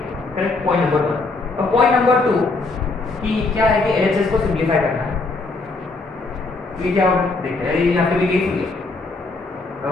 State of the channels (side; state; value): right; quieter; 3.5 dB